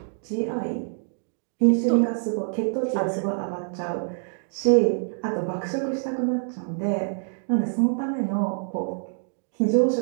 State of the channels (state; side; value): silent; left; 61 dB below the other